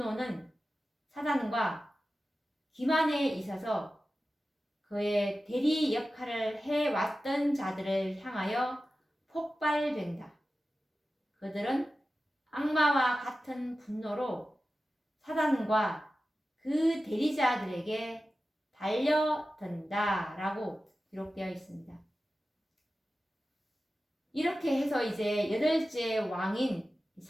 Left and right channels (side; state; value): both; normal; correlation 0.94